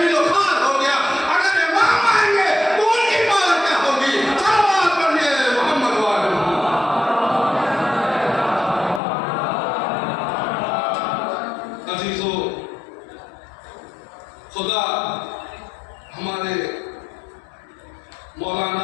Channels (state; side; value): drops out; right; at 9.0 s